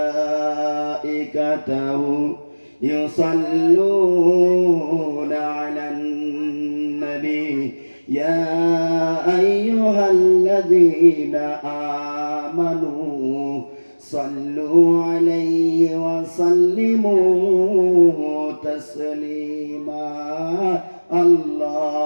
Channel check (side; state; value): both; inverted; correlation -1.00